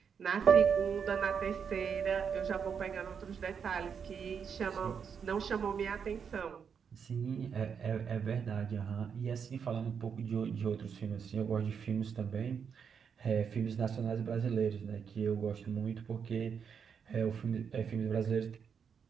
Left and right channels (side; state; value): left; quieter; 6.8 dB